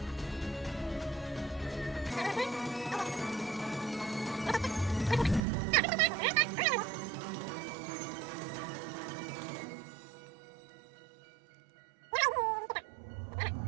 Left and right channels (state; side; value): drops out; left; at 5.4 s